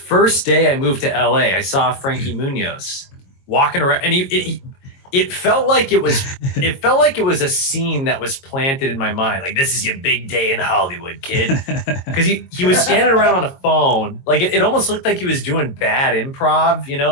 day I moved to LA, I saw Frankie Munoz walking around, and it felt like it was a scene that was planted in my mind. Like, this is your big day in Hollywood, kid. Because he was standing around on a phone. Like it almost looked like he was doing bad improv,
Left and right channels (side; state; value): right; late; 22 ms